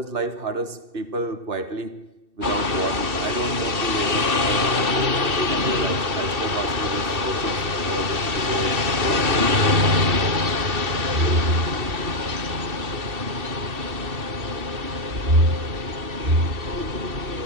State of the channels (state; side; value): late; left; 2.6 ms